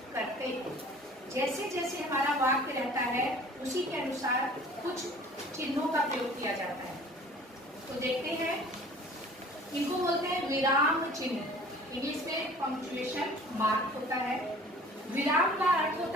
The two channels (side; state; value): both; normal; correlation 0.48